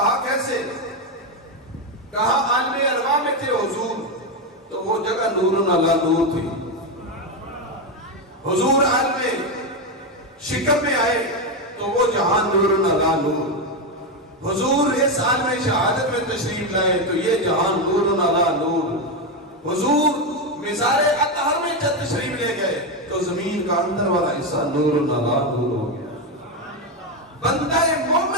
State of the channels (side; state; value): both; normal; correlation 0.09